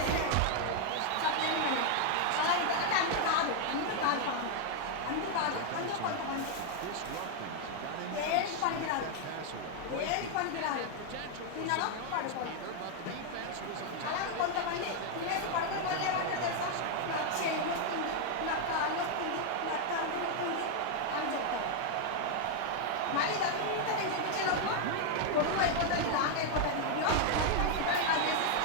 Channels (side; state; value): both; different; correlation 0.00